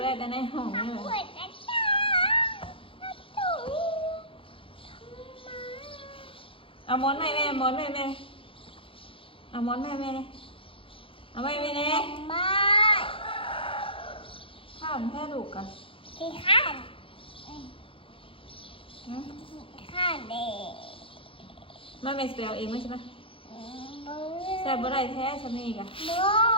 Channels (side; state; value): right; late; 0.26 ms